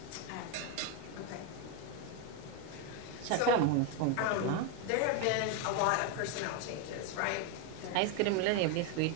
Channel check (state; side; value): different; both; correlation 0.02